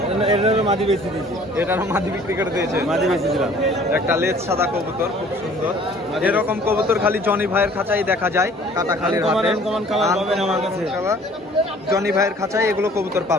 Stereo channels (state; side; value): normal; both; correlation 0.53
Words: এটারও মাদি বেশি দিয়েছি, এটারও মাদি বিক্রি করে দিয়েছে। মাদি বেশি দিলাম। একটা লেজ সাদা কবুতর, খুব সুন্দর। এরকম কবুতর খালি জনি ভাইয়ের খাঁচায় দেখা যায়, কাটাখালির হাটে। আনকমন কালার পাবেন আমার কাছে। জনি ভাইয়ের খাঁচায় এগুলো কবুতর